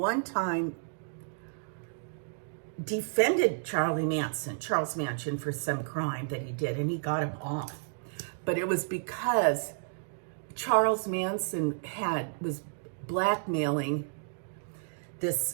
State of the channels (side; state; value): left; silent; digital silence